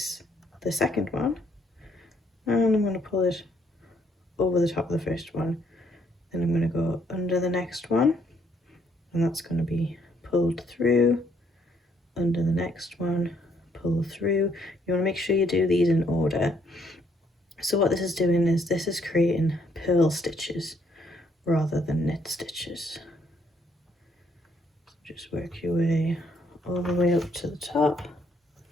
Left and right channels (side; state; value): both; normal; correlation 0.69